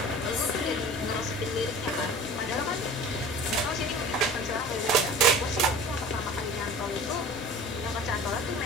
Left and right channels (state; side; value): normal; both; correlation 0.40